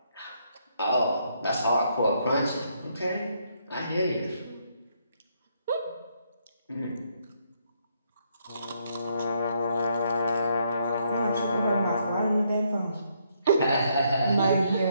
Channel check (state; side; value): inverted; both; correlation -0.73